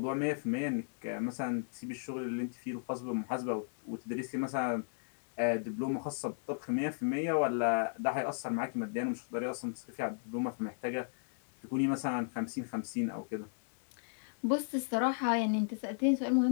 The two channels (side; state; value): right; silent; digital silence